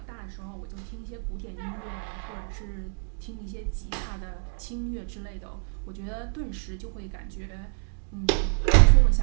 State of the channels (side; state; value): left; silent; 59 dB below the other